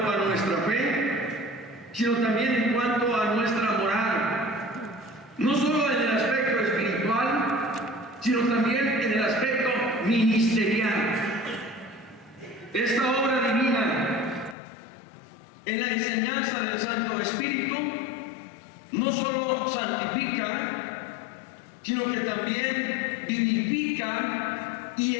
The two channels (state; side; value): drops out; right; at 14.6 s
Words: a nuestra fe, sino también en cuanto a nuestra moral, no solo en el aspecto espiritual, sino también en el aspecto ministerial. Esta obra divina en la enseñanza del Santo Espíritu no solo santifica, sino que también vivifica y